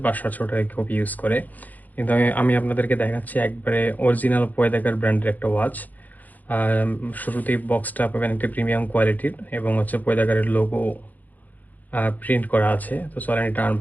500 টাকা কপি ইউজ করে। কিন্তু আমি আপনাদেরকে দেখাচ্ছি একবারে অরিজিনাল পয়দাগার ব্র্যান্ডের একটা ওয়াচ। শুরুতেই বক্সটা পাবেন একটা প্রিমিয়াম কোয়ালিটির এবং হচ্ছে পয়দাগারের লোগো প্রিন্ট করা আছে। তো চলেন এটা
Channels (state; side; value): late; right; 0.082 ms